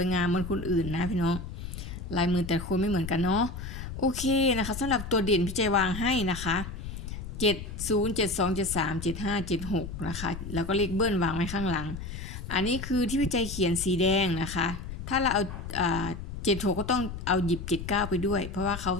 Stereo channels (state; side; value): noise; left; rumble, 8 dB below the sound